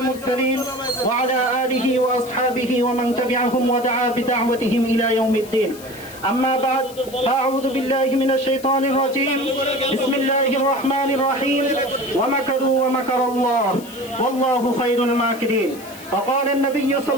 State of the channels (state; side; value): noise; left; hiss, 18 dB below the sound